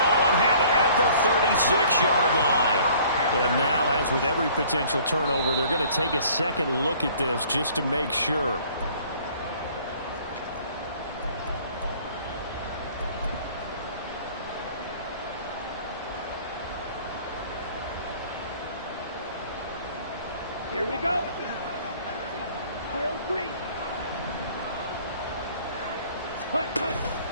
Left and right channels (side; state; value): both; inverted; correlation -0.53